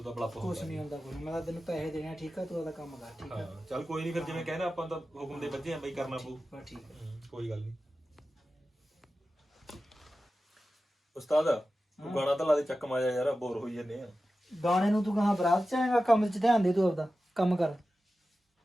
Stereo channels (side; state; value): both; normal; correlation 0.94